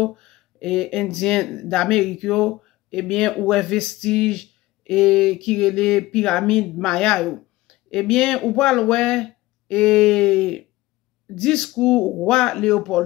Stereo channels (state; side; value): quieter; right; 18.6 dB